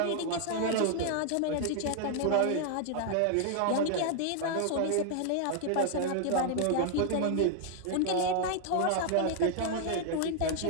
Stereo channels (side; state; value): both; different; correlation 0.00